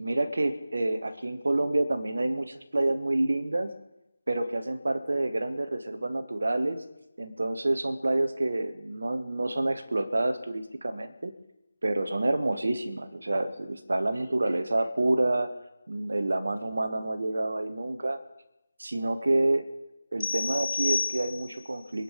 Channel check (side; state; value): both; inverted; correlation -0.97